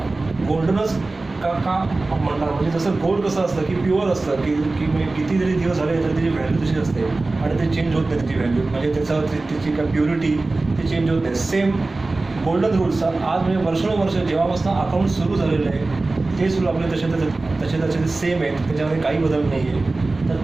गोल्डनच का म्हणतात. म्हणजे जसं गोल्ड कसं असतं की प्युअर असतं की किती जरी दिवस झाले तरी त्याची व्हॅल्यू तशी असते आणि ते चेंज होत नाही त्याची व्हॅल्यू. म्हणजे त्याची काय प्युरिटी ते चेंज होत नाही. सेम गोल्डन रूल्स आज म्हणजे वर्षानुवर्ष जेव्हापासून अकाउंट सुरू झालेलं आहे ते सुरू आपले तसे सेम आहेत, त्याच्यामध्ये काही बदल नाही आहे. तर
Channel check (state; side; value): quieter; left; 3.3 dB